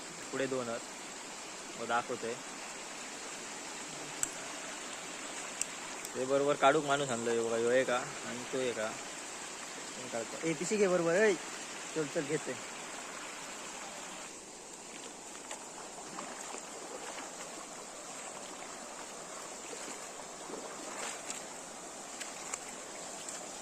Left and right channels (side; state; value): both; identical; correlation 1.00